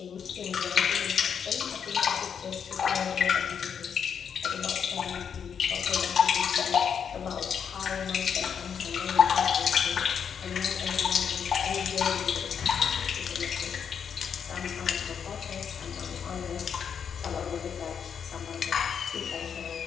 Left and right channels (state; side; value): quieter; right; 7.4 dB